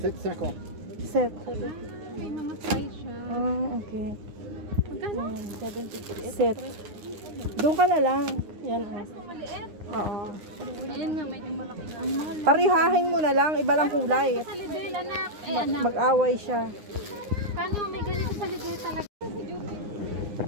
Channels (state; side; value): late; left; 9.7 ms